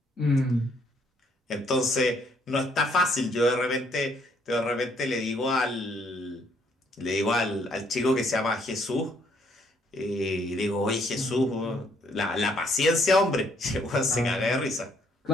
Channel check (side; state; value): both; normal; correlation 0.67